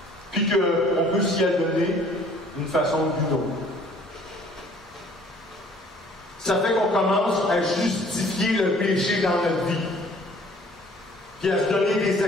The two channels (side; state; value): both; normal; correlation 0.55